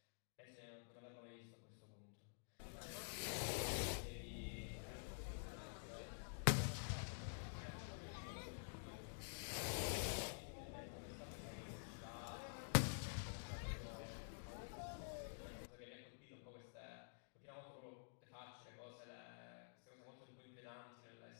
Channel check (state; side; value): silent; right; digital silence